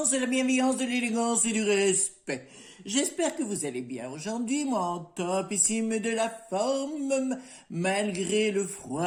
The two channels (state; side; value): identical; both; correlation 1.00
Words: de la bienveillance, de l'élégance et du respect. J'espère que vous allez bien aujourd'hui, moi en topissime de la forme, malgré le